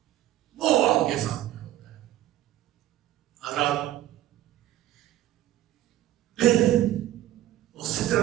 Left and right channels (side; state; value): left; quieter; 13.8 dB